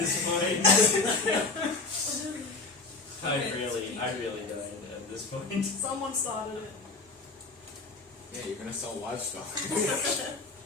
point. I really don't at this point. Someone started it. Yeah, you're gonna sell livestock. I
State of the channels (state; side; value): quieter; right; 3.8 dB